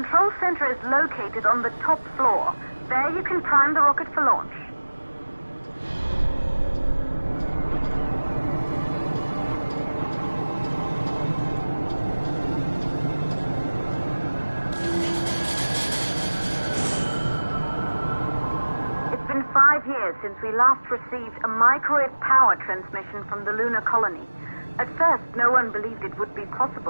center is located on the top floor. There you can prime the rocket for launch. It's been 5 years since we last received a microwave power transmission from the lunar colony. At first, no one believed it would be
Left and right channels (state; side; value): inverted; both; correlation -1.00